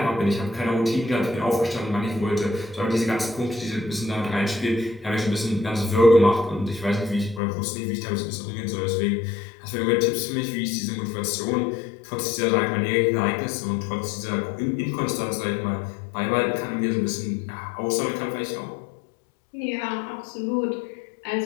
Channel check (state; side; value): drops out; right; at 7.4 s